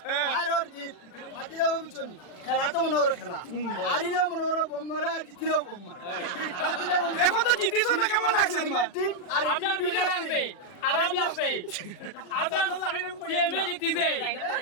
আর ওর জিত মাতি দেবো বিচনি খেলা তো মনে ওর খেলা হারিলেও মনে ওর বোম্মারা আর জিতিলেও বোম্মারা এখন তো জিতিস তো কেমন লাগছে তোমার টিম আর আপনার বুঝা লাগবে আরাম লাগবে আপনার সিএমএ জিতিছে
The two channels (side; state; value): right; late; 40 ms